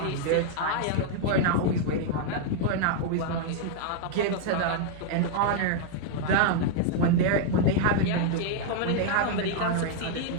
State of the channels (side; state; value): both; different; correlation 0.00